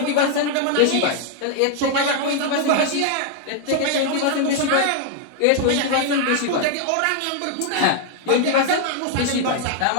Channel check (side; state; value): both; different; correlation 0.00